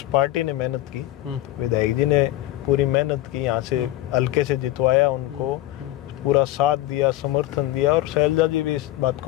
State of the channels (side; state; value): right; quieter; 15.3 dB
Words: पार्टी ने मेहनत की। विधायक जी ने पूरी मेहनत की, यहाँ से हल्के से जितवाया, उनको पूरा साथ दिया, समर्थन दिया। और शैलजा जी भी इस बात